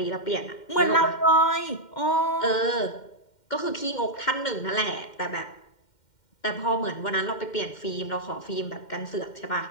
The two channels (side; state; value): right; late; 2.1 ms